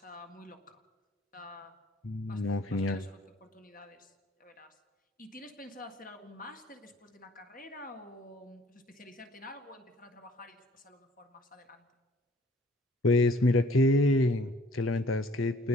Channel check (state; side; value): normal; both; correlation 0.57